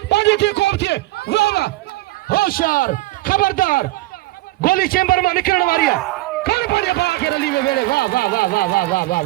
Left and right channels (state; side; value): quieter; left; 18.9 dB